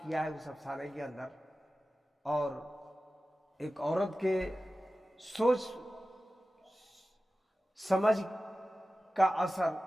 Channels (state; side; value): normal; both; correlation 0.95